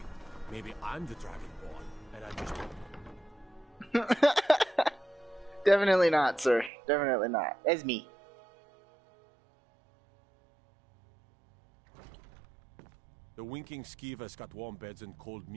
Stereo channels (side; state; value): left; drops out; at 6.7 s